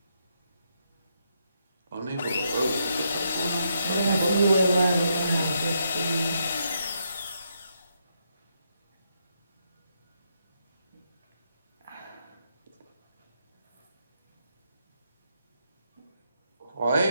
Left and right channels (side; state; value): both; inverted; correlation -0.78